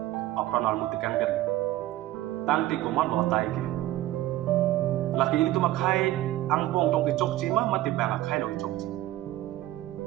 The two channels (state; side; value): quieter; left; 15.3 dB